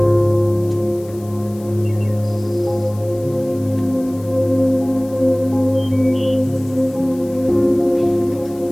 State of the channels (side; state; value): left; noise; hiss, 24 dB below the sound